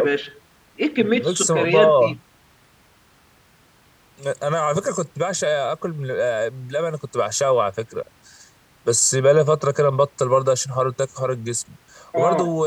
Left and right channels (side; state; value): both; identical; correlation 1.00